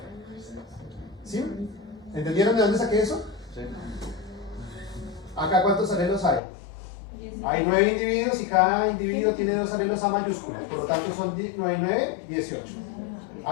¿Sí? ¿Entendieron de dónde saqué eso? Sí. Acá ¿cuántos alelos hay? Hay 9 individuos y cada individuo tiene 2 alelos a mayúscula. Por lo tanto son 9 y 9, 18.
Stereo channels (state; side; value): drops out; right; at 6.4 s